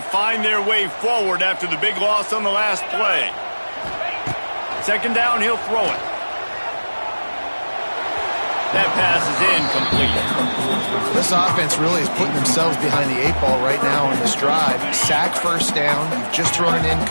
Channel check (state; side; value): inverted; both; correlation -1.00